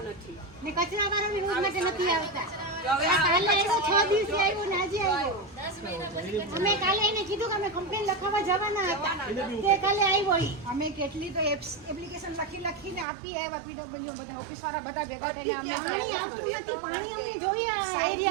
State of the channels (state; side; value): drops out; left; at 13.1 s